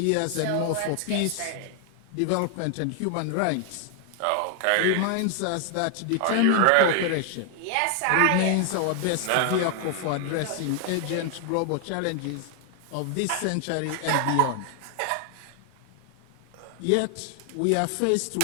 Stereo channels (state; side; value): different; both; correlation 0.00